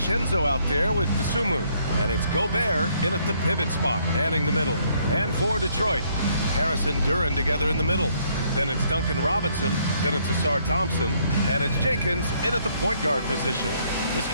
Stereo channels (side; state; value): both; inverted; correlation -0.68